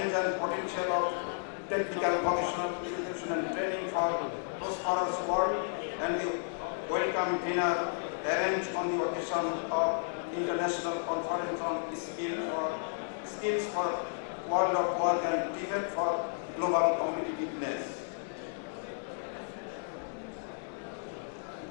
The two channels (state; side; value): silent; right; digital silence